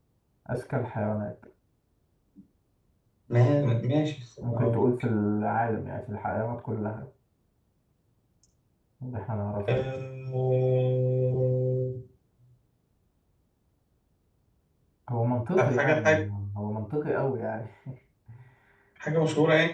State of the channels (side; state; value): both; identical; correlation 1.00